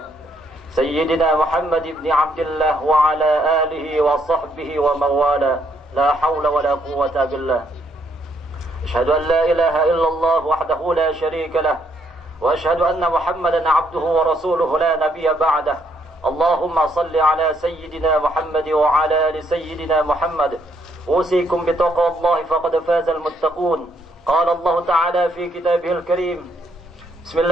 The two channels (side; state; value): both; normal; correlation 0.71